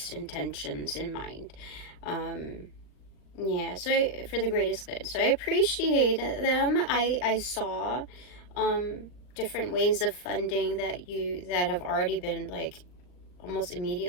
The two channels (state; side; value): late; right; 39 ms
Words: intentions in mind. Yeah, so for the greatest good. So I appreciate them. I saw different ways of funding that have already been like almost